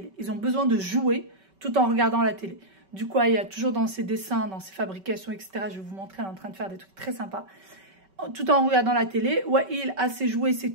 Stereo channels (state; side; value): late; left; 5.2 ms